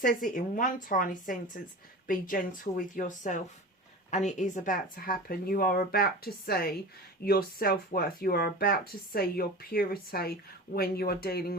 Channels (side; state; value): both; normal; correlation 0.33